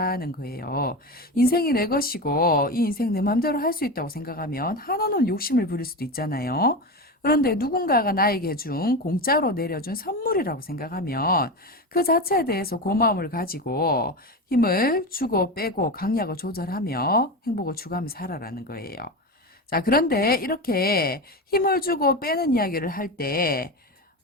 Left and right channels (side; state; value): both; normal; correlation 0.21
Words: 거예요. 인생이 내 것이고 이 인생 내 맘대로 할 수 있다고 생각하면 한없는 욕심을 부릴 수도 있잖아요. 그런데 누군가가 나에게 준 공짜로 내려준 선물이라고 생각하면 그 자체에 대해서 고마움을 가지고 힘을 주고 빼고 강약을 조절하며 행복을 추구하며 살아라는 거예요. 자, 그런데 이렇게 힘을 주고 빼는 이야기를 할 때